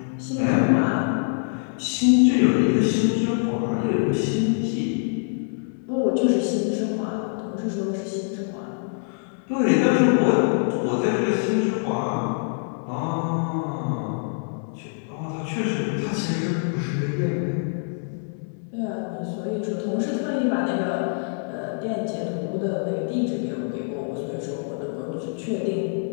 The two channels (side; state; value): right; silent; 62 dB below the other